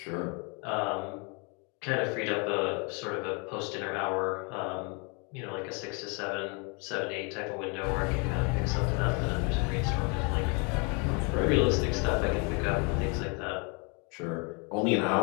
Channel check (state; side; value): quieter; right; 33.4 dB